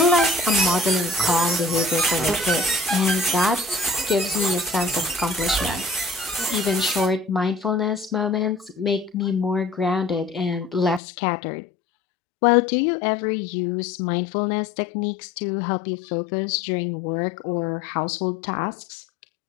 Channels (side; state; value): right; drops out; at 11.0 s